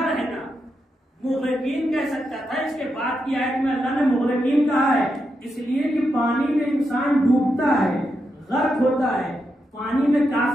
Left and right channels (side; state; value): both; normal; correlation 0.85